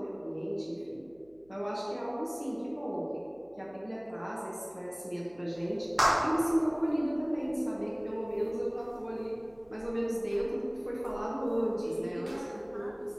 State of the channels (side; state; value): right; noise; hum, 29 dB below the sound